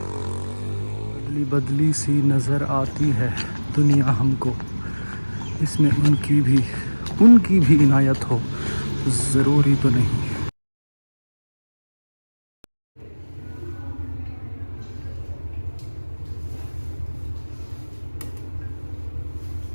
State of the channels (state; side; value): inverted; both; correlation -1.00